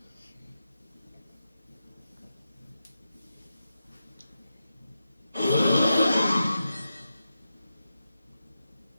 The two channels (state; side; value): inverted; both; correlation -0.88